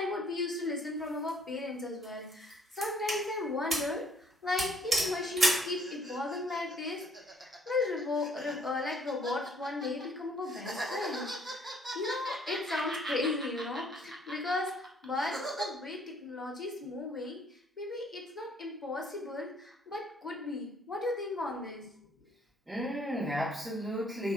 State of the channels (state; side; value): normal; both; correlation 0.62